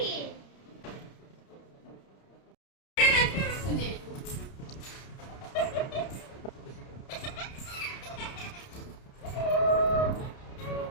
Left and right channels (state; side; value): late; right; 30 ms